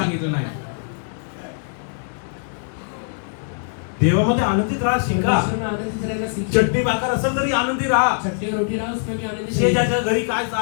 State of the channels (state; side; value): silent; right; digital silence